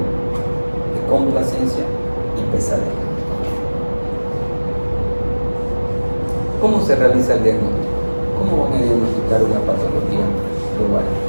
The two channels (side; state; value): both; inverted; correlation -1.00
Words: complacencia y pesadez. ¿Cómo se realiza el diagnóstico? ¿Cómo van a diagnosticar una patología de ovario?